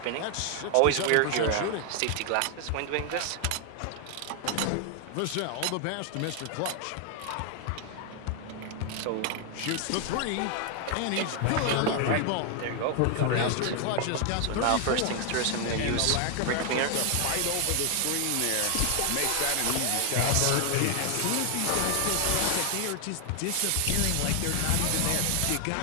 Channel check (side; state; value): both; different; correlation 0.00